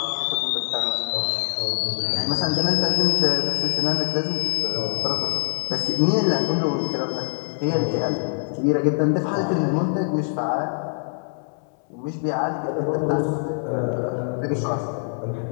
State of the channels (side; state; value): right; silent; digital silence